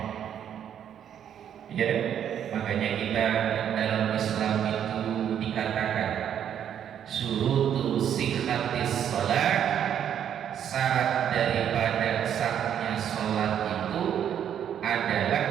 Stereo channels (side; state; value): left; quieter; 9.3 dB